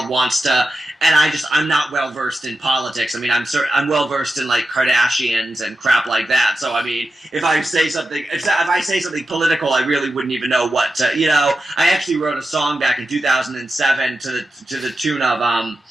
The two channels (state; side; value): normal; both; correlation 0.91